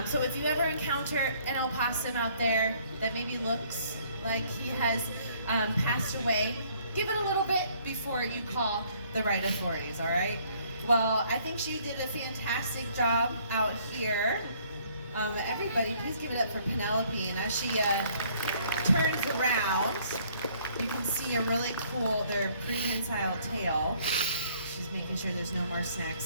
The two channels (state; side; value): inverted; both; correlation -0.62